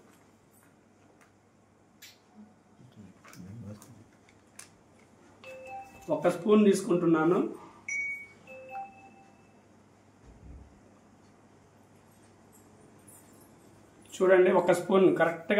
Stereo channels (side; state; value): both; identical; correlation 1.00